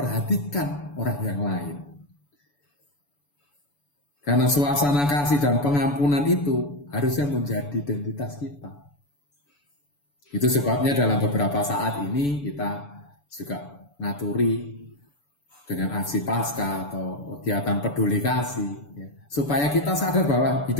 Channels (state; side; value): late; right; 6.9 ms